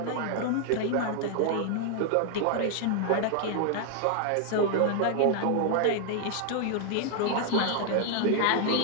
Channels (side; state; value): both; different; correlation 0.00